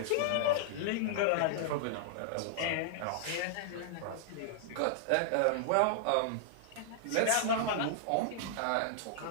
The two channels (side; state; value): both; different; correlation -0.01